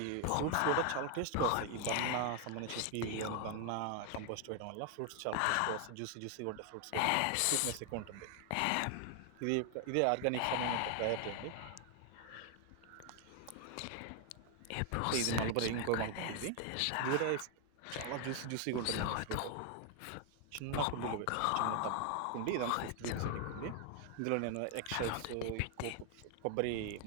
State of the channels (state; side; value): different; both; correlation 0.00